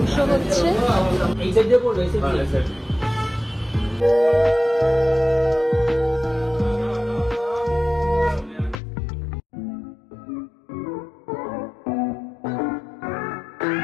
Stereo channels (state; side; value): drops out; right; at 8.8 s